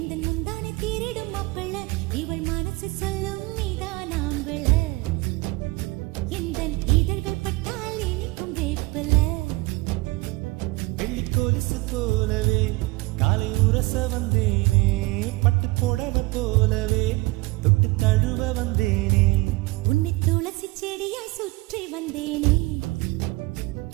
முந்தானை தீரிடும் அப்பள இவள் மனசு சொல்லும் நீதான் ஆம்பள எந்த இதழ்கள் பட்டால் இனிக்கும் வேப்பல வெள்ளி கொலுசு போலவே காலை உரச வந்தேனே பட்டு புடவ போலவே தொட்டு தழுவ வந்தேனே உன்னை துளசி செடியாய் சுற்றி வந்தேனே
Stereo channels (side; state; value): left; quieter; 22.1 dB